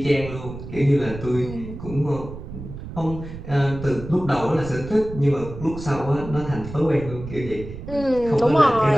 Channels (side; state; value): right; noise; rumble, 11 dB below the sound